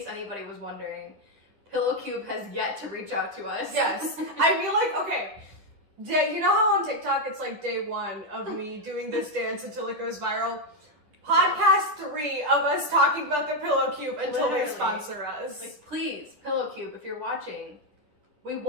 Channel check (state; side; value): late; left; 10 ms